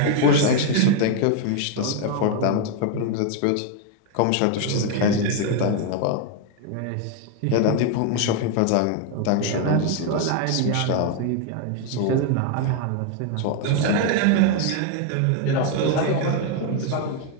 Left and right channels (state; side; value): different; both; correlation 0.01